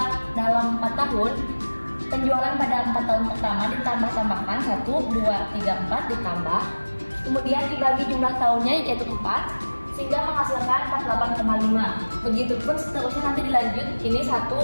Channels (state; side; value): inverted; both; correlation -1.00